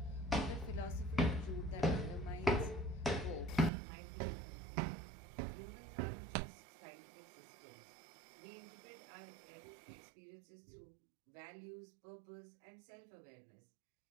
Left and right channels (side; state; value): left; drops out; at 3.7 s